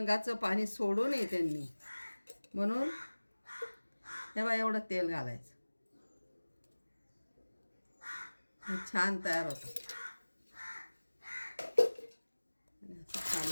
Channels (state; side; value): inverted; both; correlation -1.00